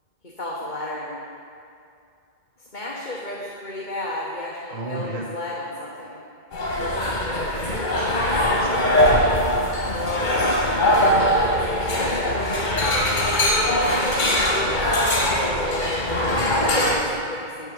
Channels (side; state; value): right; late; 2.2 ms